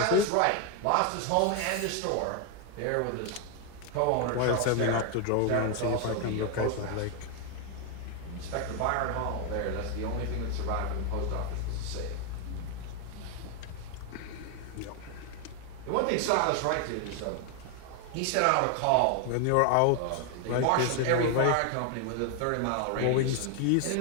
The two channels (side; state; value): both; different; correlation 0.01